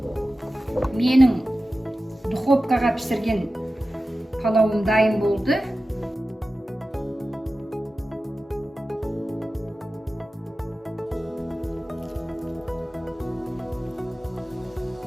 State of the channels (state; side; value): normal; both; correlation 0.94